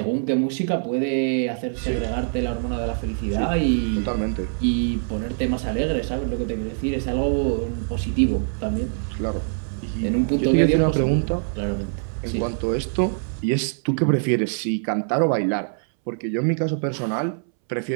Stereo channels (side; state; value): left; silent; 63 dB below the other